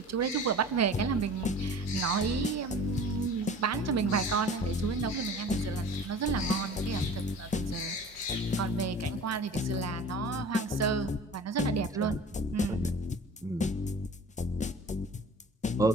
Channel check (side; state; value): both; normal; correlation 0.41